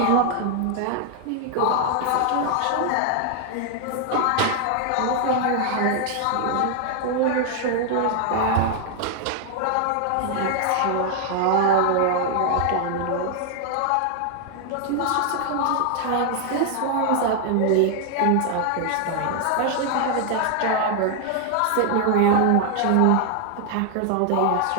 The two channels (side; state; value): both; different; correlation 0.00